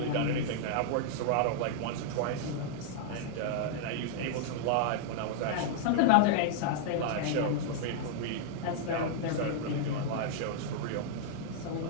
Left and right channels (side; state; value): both; different; correlation -0.01